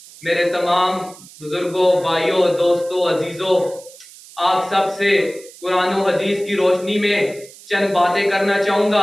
میرے تمام بزرگوں، بھائیوں، دوستوں، عزیزوں، آپ سب سے قرآن و حدیث کی روشنی میں چند باتیں کرنا چاہوں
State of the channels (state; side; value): noise; right; hiss, 20 dB below the sound